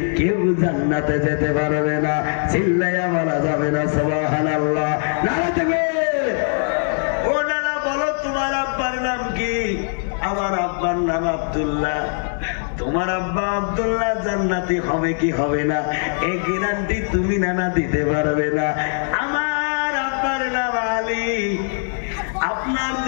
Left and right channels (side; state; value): right; silent; 57 dB below the other